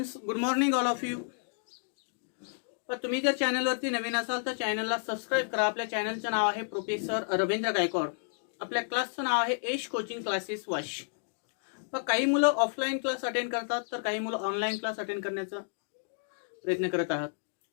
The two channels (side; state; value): right; silent; digital silence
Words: good morning all of you. तर तुम्ही जर चॅनलवरती नवीन असाल तर चॅनलला सबस्क्राईब करा. आपल्या चॅनलचं नाव आहे प्रोफेसर रवींद्र गायकवाड. आपल्या क्लासचं नाव आहे एश कोचिंग क्लासेस वाश. पण काही मुलं ऑफलाईन क्लास अटेंड करतात तर काही मुलं ऑनलाईन क्लास अटेंड करण्याचा प्रयत्न करत आहात.